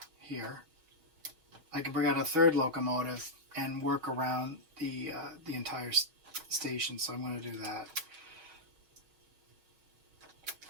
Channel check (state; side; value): late; left; 5.8 ms